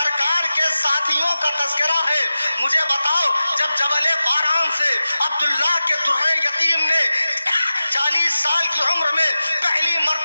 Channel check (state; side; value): inverted; both; correlation -0.94